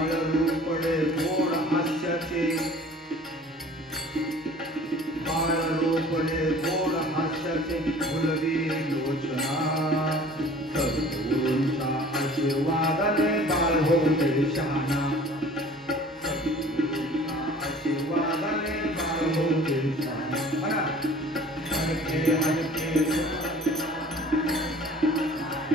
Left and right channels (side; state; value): both; normal; correlation 0.48